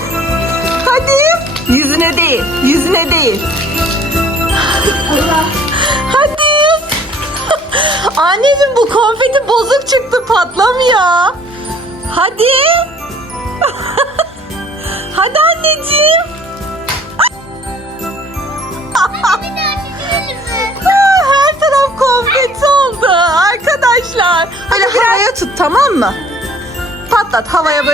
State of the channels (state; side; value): normal; both; correlation 0.55